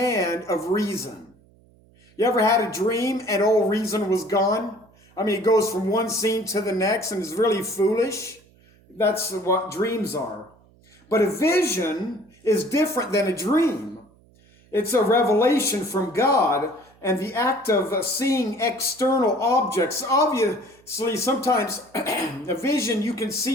of reason. You ever had a dream and all reason was gone? I mean, it goes from one scene to the next and is really foolish. That's what dreams are. But a vision is different than a dream. It's a revelation from God, and the act of seeing external objects. Obviously, sometimes a vision, you can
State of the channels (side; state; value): right; noise; hum, 30 dB below the sound